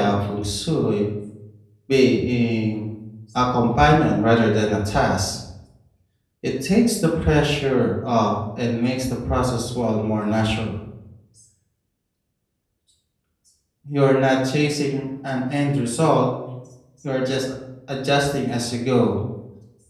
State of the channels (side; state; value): both; identical; correlation 1.00